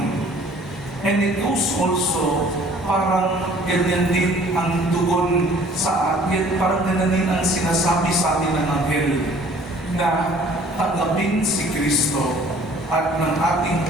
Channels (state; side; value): normal; both; correlation 0.54